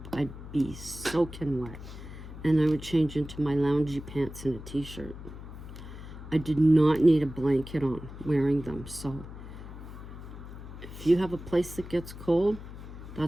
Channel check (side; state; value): left; noise; hum, 12 dB below the sound